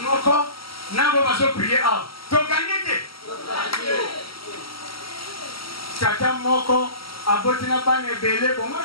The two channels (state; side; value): late; right; 0.75 ms